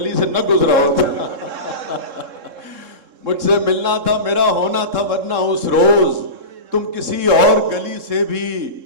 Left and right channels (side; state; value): left; late; 3.7 ms